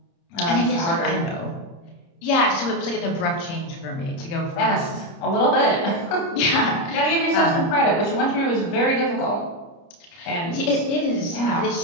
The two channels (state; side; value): late; right; 30 ms